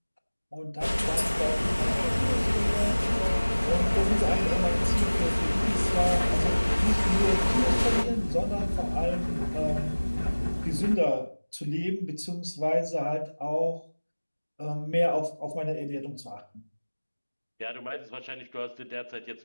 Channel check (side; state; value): both; inverted; correlation -1.00